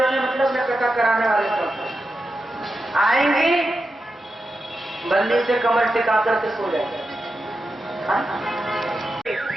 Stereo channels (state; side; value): normal; both; correlation 0.89